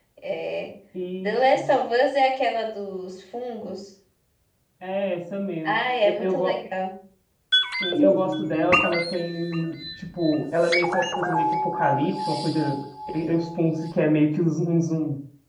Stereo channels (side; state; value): both; identical; correlation 1.00